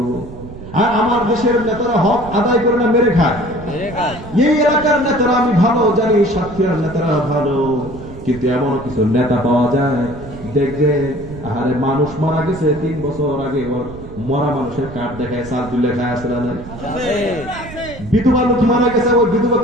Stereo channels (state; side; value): noise; right; rumble, 14 dB below the sound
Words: আর আমার দেশের নেতারা হক আদায় করে না মেরে খায়। এই এলাকার নেতারা আমি ভালো জানি, সাতক্ষীরার নেতারা ভালো, কিন্তু এমন কিছু নেতা পাওয়া যায় দেখবে আরে মানুষ মারা গেছে 3 বছর আগে, ওর মরা মানুষের কার্ড দেখায় চাল তুলে খায়, আছে না? বিধবা লোক মারা গেছে, ওই বিধবা